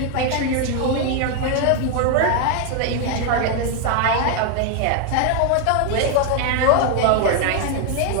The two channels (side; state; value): both; different; correlation 0.01